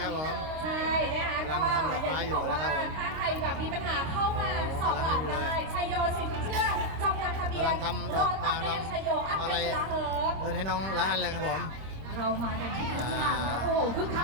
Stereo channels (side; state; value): left; late; 26 ms